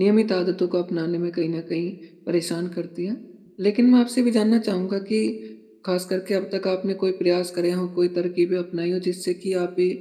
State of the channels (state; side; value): identical; both; correlation 1.00